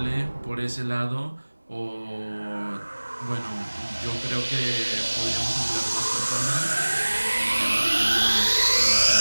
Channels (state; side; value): inverted; both; correlation -1.00